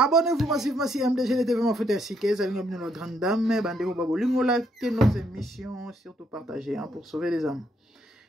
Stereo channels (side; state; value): both; normal; correlation 0.73